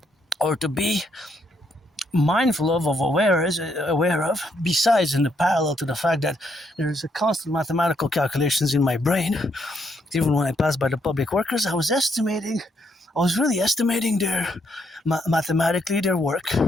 or to be mindful of aware of, besides in the parallel to the fact that there is a constant mathematical calculations in my brain. Even when I passed by the public workers, I was really estimating their mathematically their work,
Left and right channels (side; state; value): both; normal; correlation 0.75